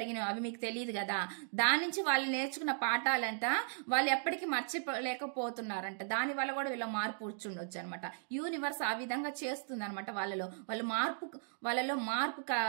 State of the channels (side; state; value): left; silent; digital silence